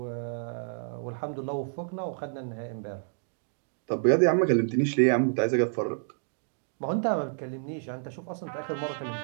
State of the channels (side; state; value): left; silent; digital silence